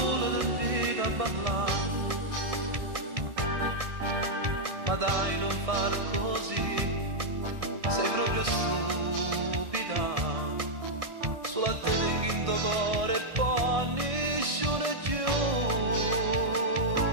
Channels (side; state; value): left; late; 1.6 ms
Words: ti invita a parlare, ma dai non far così, sei proprio stupida, sulla te tengo in tuo cuore e poi nessuno più.